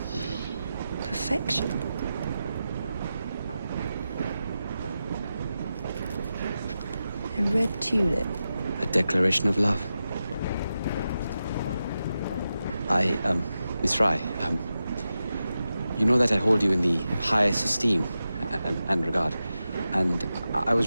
perfection. A red tulip. A declaration of love. Miss Fry, you know that I hold you in the highest esteem and regard, and I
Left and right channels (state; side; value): inverted; both; correlation -0.91